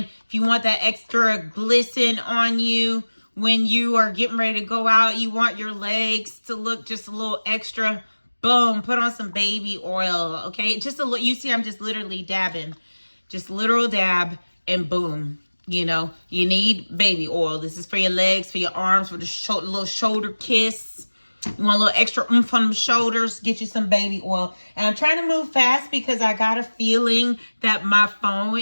if you want that extra glisten on you when you are getting ready to go out, you want your legs to look just a little extra, boom, put on some baby oil, okay? Just a little, you see I'm just literally dabbing. Just literal dab and boom. You know, you need baby oil. This is for your legs, for your arms, for the little shoulder kiss. You want a little extra oomph on the shoulders, get you some baby oil. And I'm trying to move fast because I got a feeling that my phone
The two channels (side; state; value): both; inverted; correlation -1.00